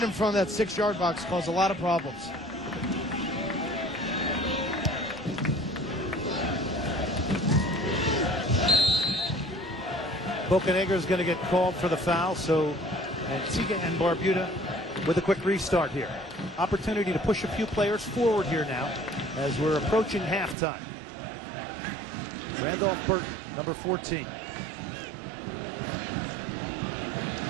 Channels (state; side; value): drops out; left; at 20.6 s